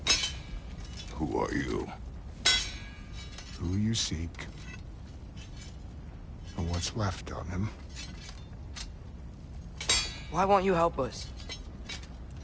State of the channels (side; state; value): both; identical; correlation 1.00